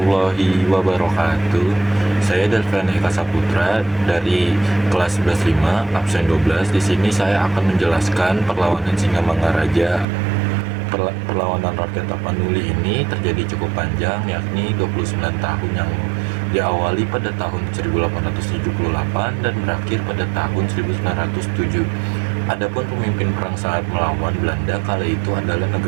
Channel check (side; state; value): left; drops out; at 10.1 s